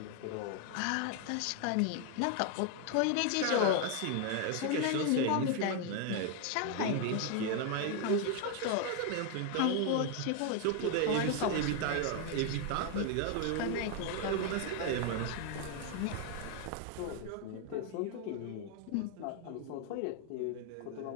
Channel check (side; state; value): both; different; correlation 0.01